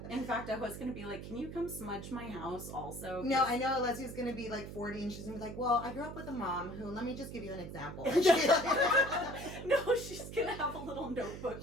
In fact, I was gonna be like, "Can you come smudge my house also?" No, I know Alexia's gonna be like 40 and she's gonna be like, well, I grew up with a mom who, let me just give you an example. No, she's gonna have a little notebook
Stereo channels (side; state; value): right; noise; hum, 10 dB below the sound